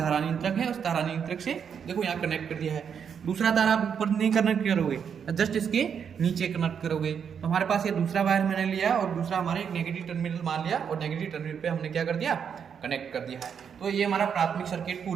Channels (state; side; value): quieter; left; 7.3 dB